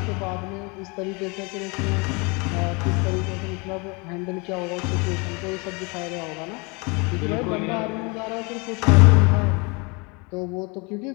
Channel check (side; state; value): right; quieter; 29.5 dB